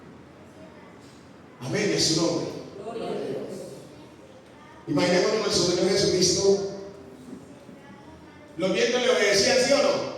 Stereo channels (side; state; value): both; identical; correlation 1.00